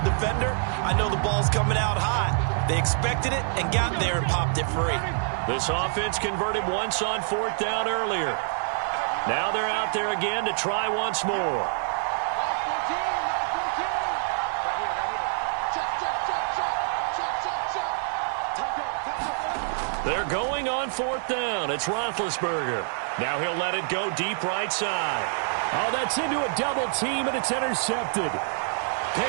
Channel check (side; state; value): left; silent; 57 dB below the other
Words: defender, I know the ball's coming out hot. They expected it and got there and popped it free. This offense converted once on 4th down earlier. Now they're out there again to try once more. They're going on 4th down. It's Roethlisberger. Now he'll let it go deep right side. Oh, that's into a double team, and it's intercepted.